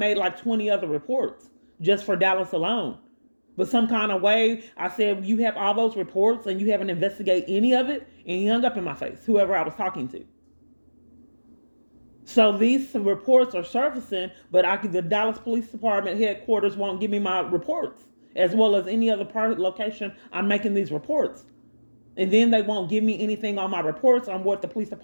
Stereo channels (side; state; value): both; inverted; correlation -1.00